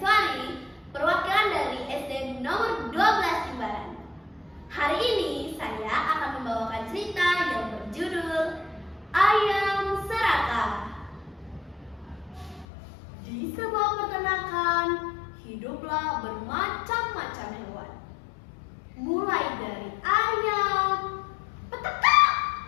perwakilan dari SD nomor 12 Jimbaran. Hari ini saya akan membawakan cerita yang berjudul Ayam Serakah. Di sebuah peternakan hiduplah bermacam-macam hewan. Mulai dari ayam, petekak,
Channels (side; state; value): right; drops out; at 12.7 s